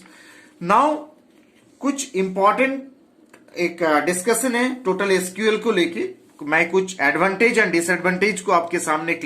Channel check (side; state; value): both; identical; correlation 1.00